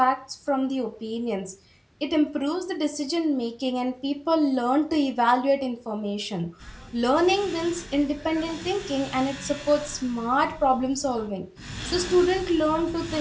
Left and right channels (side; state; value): both; identical; correlation 1.00